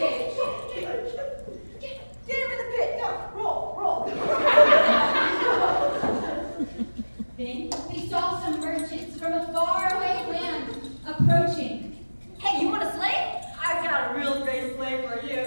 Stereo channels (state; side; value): inverted; both; correlation -1.00